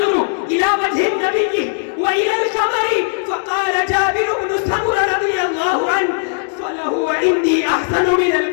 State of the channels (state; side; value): silent; right; digital silence